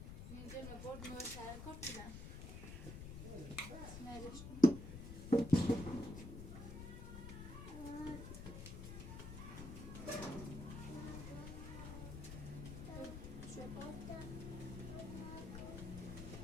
Min jävla bord med så här kort till den. Snälla.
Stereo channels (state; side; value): noise; left; rumble, 8 dB below the sound